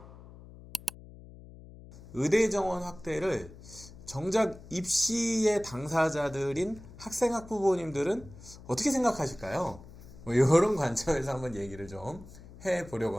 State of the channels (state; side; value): noise; left; hum, 18 dB below the sound